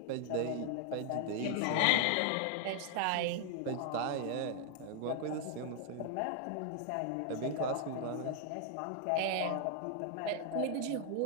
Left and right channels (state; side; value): different; both; correlation 0.00